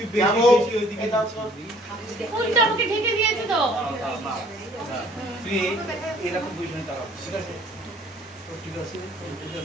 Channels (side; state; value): both; normal; correlation 0.57